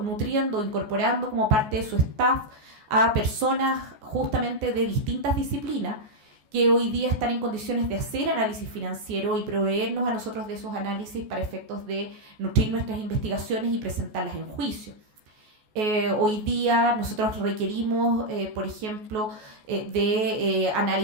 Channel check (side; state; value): left; late; 14 ms